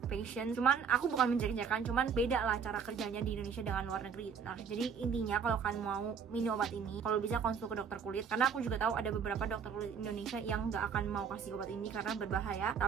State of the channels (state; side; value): quieter; left; 6.6 dB